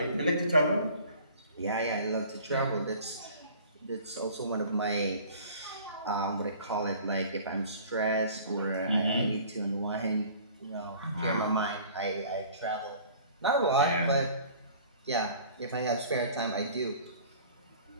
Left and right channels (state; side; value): inverted; both; correlation -0.48